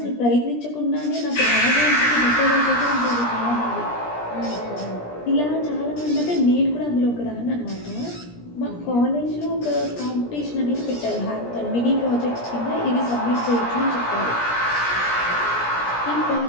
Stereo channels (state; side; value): late; right; 17 ms